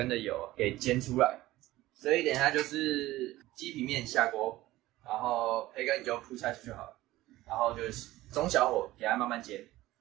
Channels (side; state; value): left; quieter; 16.9 dB